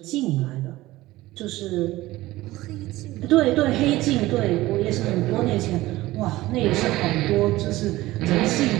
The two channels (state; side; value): quieter; left; 17.7 dB